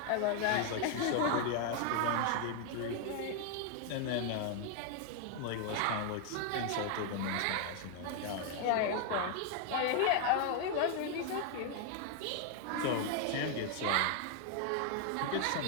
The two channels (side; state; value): both; different; correlation 0.00